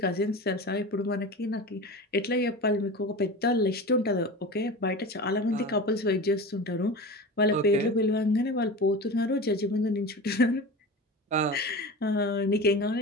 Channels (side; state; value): both; normal; correlation 0.30